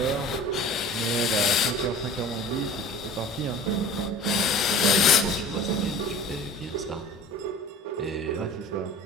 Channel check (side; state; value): both; normal; correlation 0.42